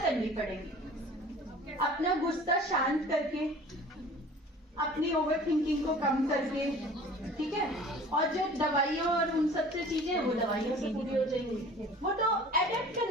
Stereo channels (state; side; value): normal; both; correlation 0.45